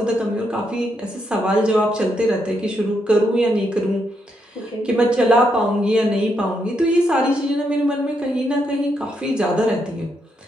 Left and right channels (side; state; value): both; normal; correlation 0.79